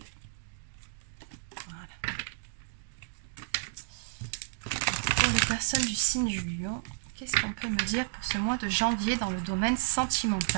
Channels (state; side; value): silent; left; digital silence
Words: Voilà. Pour les personnes du signe du lion, qu'est-ce qu'on peut me dire pour ce mois de janvier dans le domaine